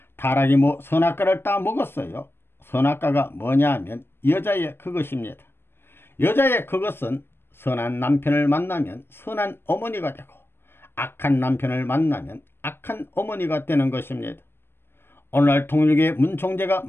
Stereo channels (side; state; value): right; late; 0.11 ms